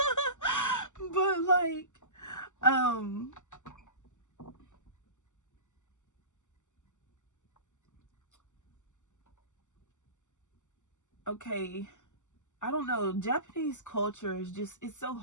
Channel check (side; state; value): right; late; 0.85 ms